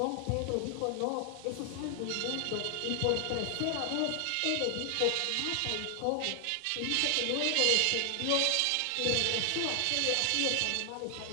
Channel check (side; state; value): both; different; correlation 0.00